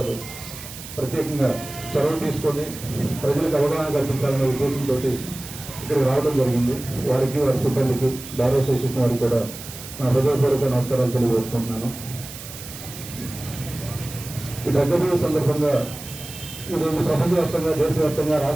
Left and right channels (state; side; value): noise; right; hiss, 13 dB below the sound